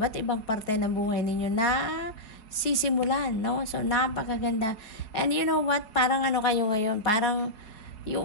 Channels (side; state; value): right; late; 4.8 ms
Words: ibang parte ng buhay ninyo na sisimulan, no? So, napakaganda. And you know what? Parang kayo ngayon? Parang you